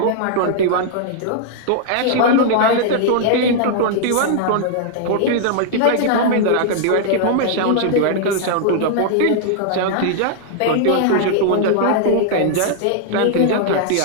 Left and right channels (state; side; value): different; both; correlation -0.01